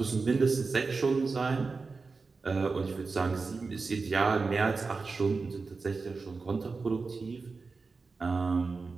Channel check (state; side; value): quieter; left; 4.3 dB